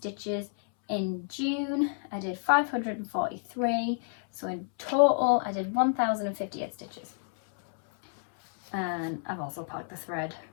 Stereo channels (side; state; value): right; silent; 58 dB below the other